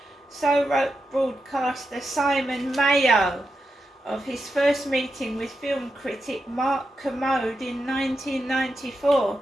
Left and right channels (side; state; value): both; normal; correlation 0.88